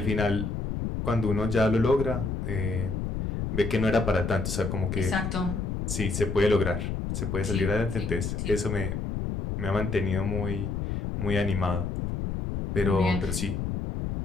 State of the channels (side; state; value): left; noise; rumble, 3 dB below the sound